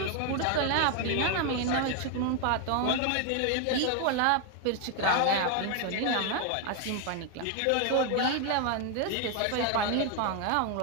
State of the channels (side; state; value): both; different; correlation 0.01